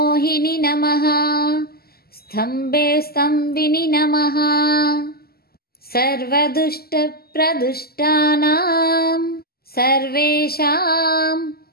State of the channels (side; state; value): right; late; 0.45 ms